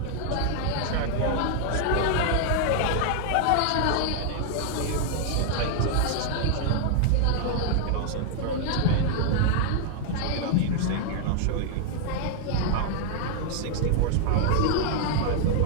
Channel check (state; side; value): different; both; correlation 0.00